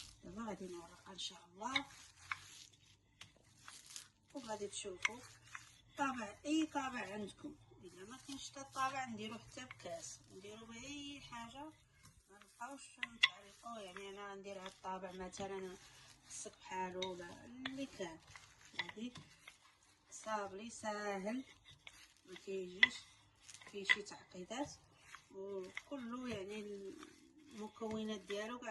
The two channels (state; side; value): identical; both; correlation 1.00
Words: دابا غادي نورقها ان شاء الله وغادي تشوفوا طابع اي طابع عندكم. الا ما كاينش حتى الطابع نديرو حتى بكاس، نديرو باي حاجه، ما نبقاوش نتعلقوا. يعني انا غندير هاد الطابع مثلا خصك بحالو ولا اللي كان. هادي صابلي ساهل ما كيجيش فيه شي تعقيدات، وكله يعني المكونات ديالو